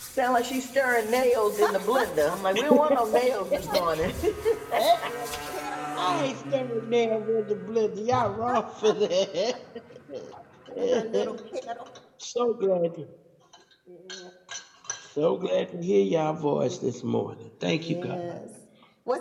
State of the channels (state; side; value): identical; both; correlation 1.00